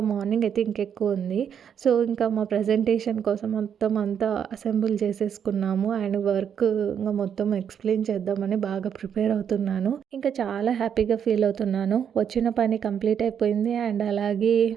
మార్నింగ్ అయితే ఇంకెక్కువ ఉంది. సో ఇంకా మా ప్రజెంటేషన్ కోసం మొత్తం అంతా అసెంబుల్ చేసేసుకున్నాము. అండ్ వర్క్ ఇంకా మొత్తం ఎక్స్ప్లెయిన్ చేద్దామని బాగా ప్రిపేర్ అవుతున్నాను. ఇంకా చాలా హ్యాపీగా ఫీల్ అవుతున్నాను. వచ్చిన పని కంప్లీట్ అయిపోయింది. అండ్ అలాగే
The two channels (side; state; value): left; quieter; 8.2 dB